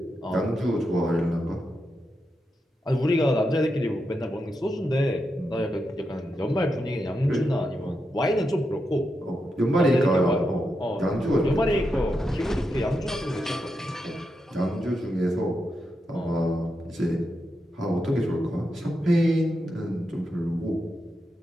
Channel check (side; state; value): both; normal; correlation 0.86